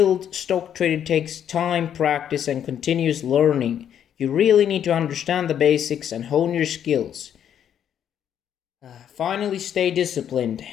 stock trader takes time, practice, and continuous learning. You really need to understand the basics and hone your skills. Finally, stay disciplined.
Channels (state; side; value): quieter; right; 9.4 dB